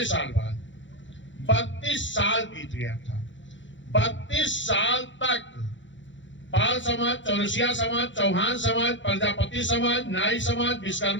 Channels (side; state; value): right; late; 0.54 ms